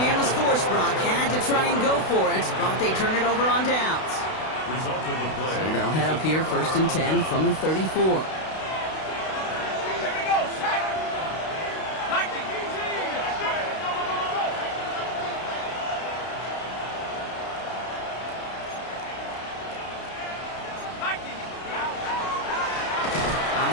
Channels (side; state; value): right; late; 32 ms